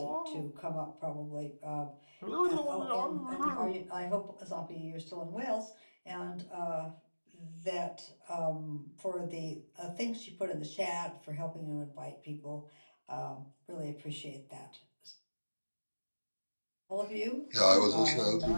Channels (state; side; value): inverted; both; correlation -1.00